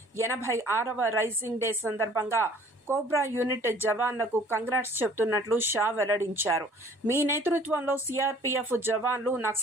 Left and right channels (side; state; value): both; normal; correlation 0.53